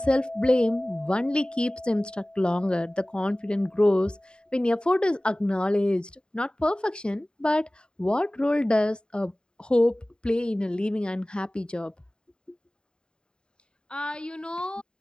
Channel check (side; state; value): right; late; 0.049 ms